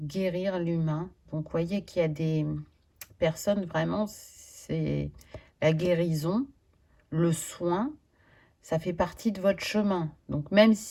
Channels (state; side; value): identical; both; correlation 1.00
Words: l'humain. Donc, vous voyez qu'il y a des personnes, vraiment, c'est la guérison, le soin, ça fait partie de votre chemin. Donc, même